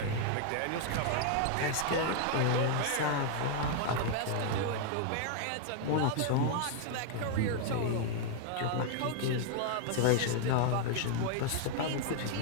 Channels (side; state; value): both; different; correlation 0.00